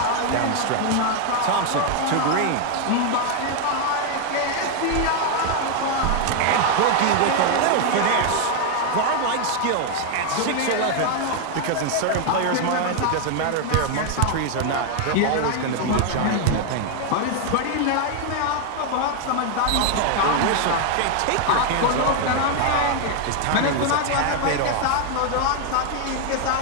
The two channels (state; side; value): different; both; correlation 0.01